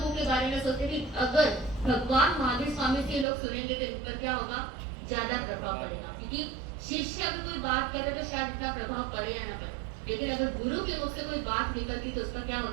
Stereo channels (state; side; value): drops out; left; at 3.2 s